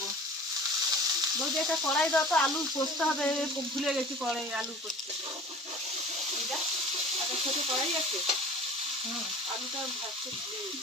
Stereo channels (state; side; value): normal; both; correlation 0.42